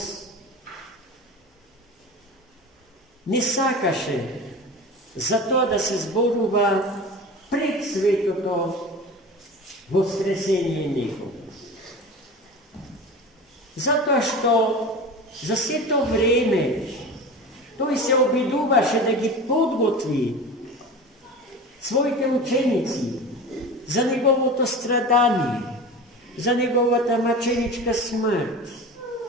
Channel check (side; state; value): both; normal; correlation 0.32